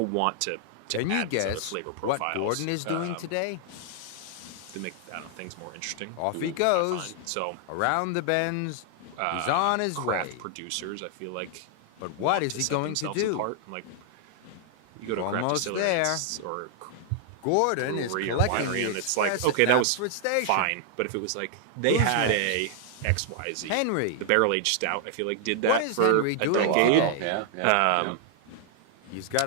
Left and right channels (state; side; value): different; both; correlation -0.01